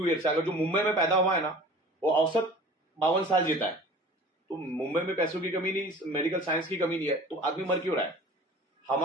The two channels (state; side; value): normal; both; correlation 0.43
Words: ईयर्स। अगर जो मुंबई में पैदा हुआ है ना, वो औसत 52 साल जीता है। तो मुंबई में पैसों की कमी नहीं, मेडिकल साइंस की कमी नहीं है, तो आदमी मर क्यों रहा है?